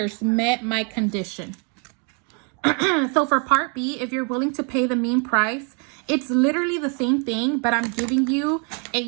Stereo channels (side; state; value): left; quieter; 37.8 dB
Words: met my condition. So for part B, if you're willing to pay the mean price, it's literally the same thing, but I'm giving you